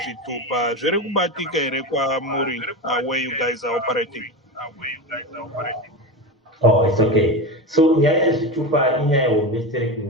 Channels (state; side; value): normal; both; correlation 0.22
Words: zviri kubatika here kwamuri where you guys are operating? Oh, it's okay. So nyaya yezvitupa inyaya hombe